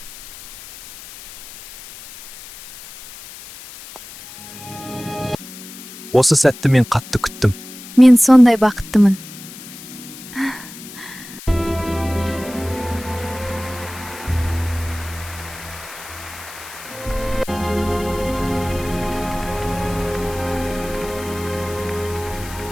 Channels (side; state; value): left; noise; hiss, 15 dB below the sound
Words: Осы сәтті мен қатты күттім. Мен сондай бақыттымын.